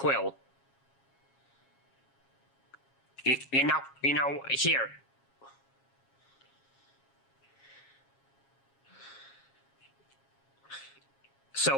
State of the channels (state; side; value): late; right; 7.3 ms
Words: You know, here. So